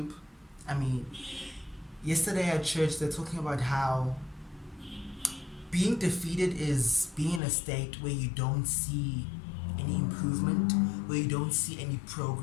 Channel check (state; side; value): drops out; right; at 7.4 s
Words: I mean, yesterday at church, they're talking about how being defeated is being in a state where you don't see any improvement, where you don't see any